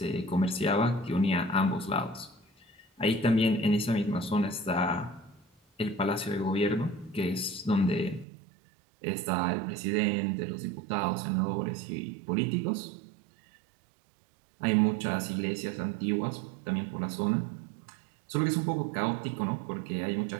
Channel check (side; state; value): left; drops out; at 8.2 s